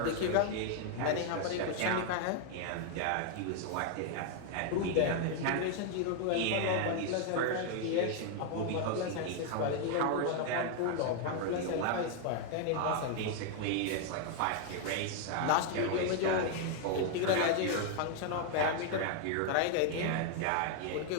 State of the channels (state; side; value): different; both; correlation 0.00